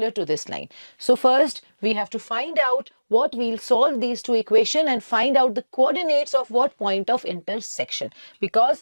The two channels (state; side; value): inverted; both; correlation -1.00